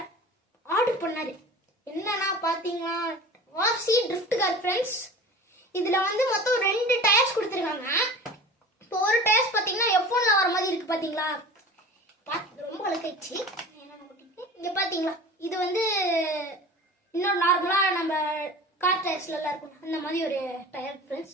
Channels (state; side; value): normal; both; correlation 0.38